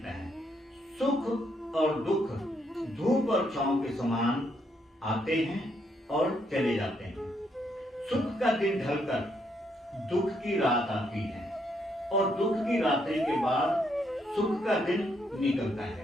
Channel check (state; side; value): normal; both; correlation 0.75